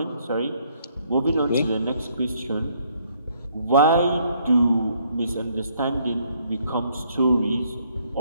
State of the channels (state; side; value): inverted; both; correlation -0.68